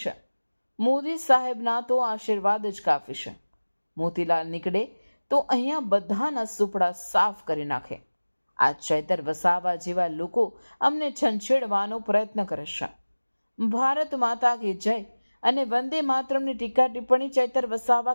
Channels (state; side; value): inverted; both; correlation -1.00